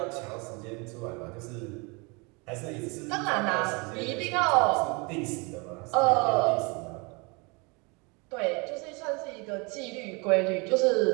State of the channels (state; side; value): quieter; left; 29.7 dB